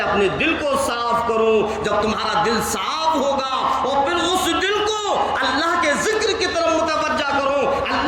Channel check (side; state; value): both; identical; correlation 1.00